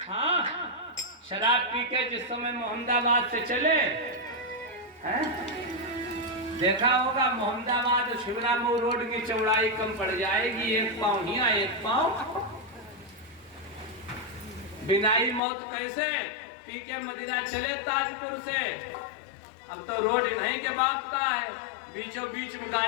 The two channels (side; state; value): right; drops out; at 15.4 s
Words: हाँ, शराब पी के जिस समय मोहम्मदाबाद से चले हैं, देखा होगा मोहम्मदाबाद शिवरामऊ रोड की चौड़ाई कम पड़ जाएगी, एक पांव हिया एक पांव। बिनाई मौत कैसे? पी के मदिरा चले ताजपुर से, अब तो रोड नहीं के बाप का है, बीचों बीच में